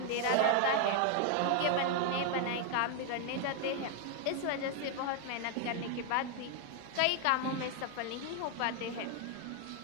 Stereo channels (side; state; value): both; different; correlation 0.00